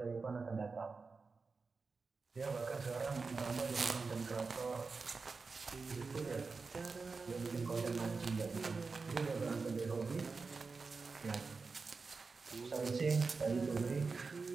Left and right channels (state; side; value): quieter; left; 4.4 dB